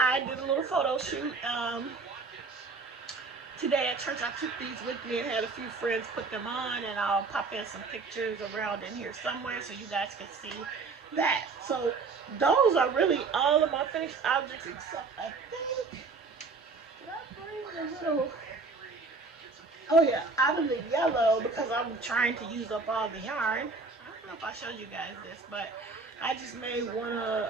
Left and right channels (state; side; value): quieter; left; 4.1 dB